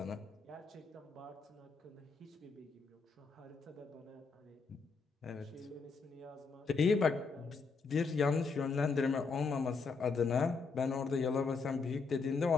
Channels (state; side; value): quieter; right; 4.7 dB